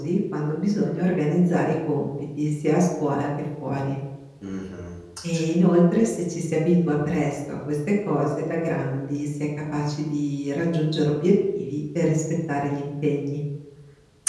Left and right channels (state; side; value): identical; both; correlation 1.00